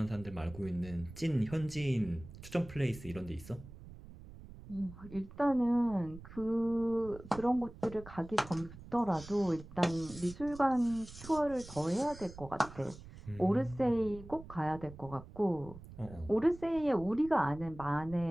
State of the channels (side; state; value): right; noise; rumble, 16 dB below the sound